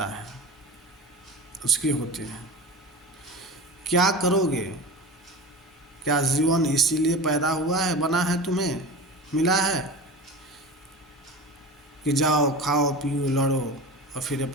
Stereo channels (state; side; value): normal; both; correlation 0.32